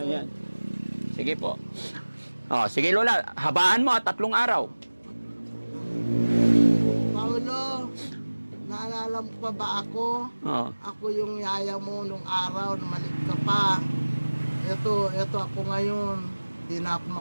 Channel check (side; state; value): both; inverted; correlation -1.00